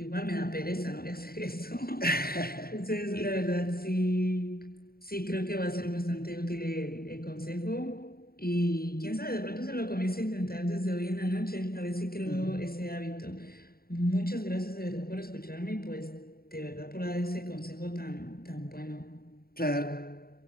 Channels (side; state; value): right; late; 0.44 ms